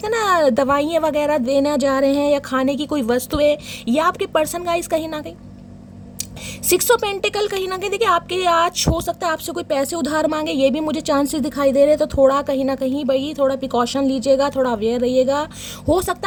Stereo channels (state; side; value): identical; both; correlation 1.00